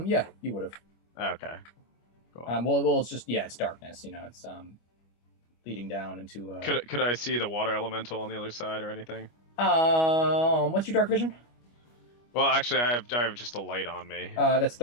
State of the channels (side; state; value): right; late; 25 ms